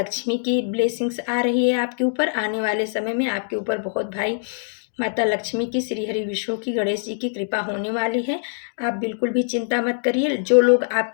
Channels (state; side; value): silent; right; digital silence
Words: की ब्लेसिंग्स आ रही है आपके ऊपर। आने वाले समय में आपके ऊपर बहुत भाई माता लक्ष्मी की, श्री हरि विष्णु की, गणेश जी की कृपा होने वाली है। आप बिल्कुल भी चिंता मत करिए। जो लोग